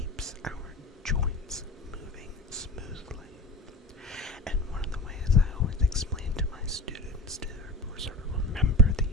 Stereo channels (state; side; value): normal; both; correlation 0.32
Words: our joints moving smoothly. And one of the ways I always explain to my students to sort of remember